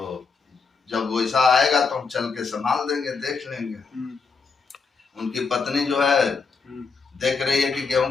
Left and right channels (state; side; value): quieter; right; 5.0 dB